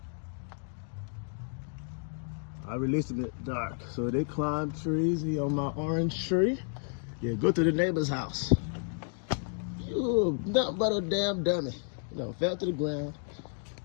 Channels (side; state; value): right; silent; 57 dB below the other